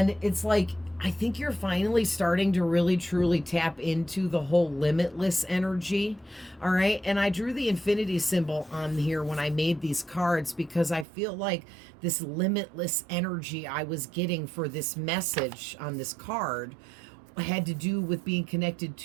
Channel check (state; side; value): drops out; left; at 11.1 s